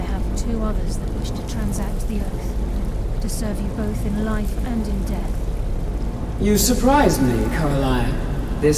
have two others that wish to transact the oath, to serve you both in life and in death. You surprise me, Carlia.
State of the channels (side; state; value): both; identical; correlation 1.00